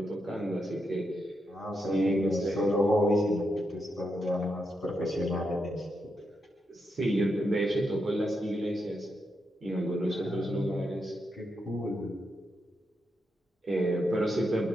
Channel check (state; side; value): normal; both; correlation 0.83